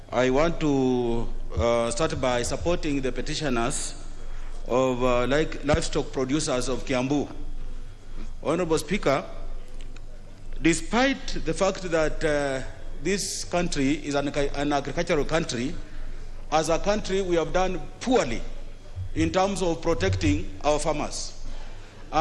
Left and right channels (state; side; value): identical; both; correlation 1.00